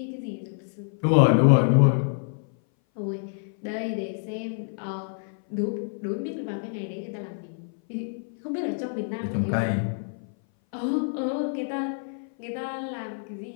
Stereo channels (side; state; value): right; silent; 58 dB below the other